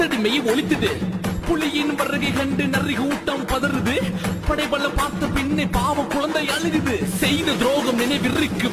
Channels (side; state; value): both; identical; correlation 1.00